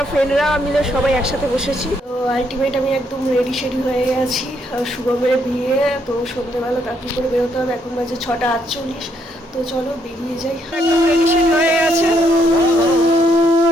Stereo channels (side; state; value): both; normal; correlation 0.73